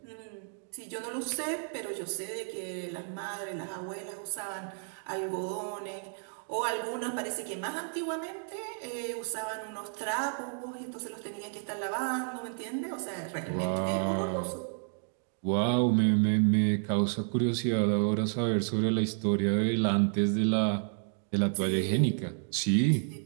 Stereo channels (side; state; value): left; silent; 57 dB below the other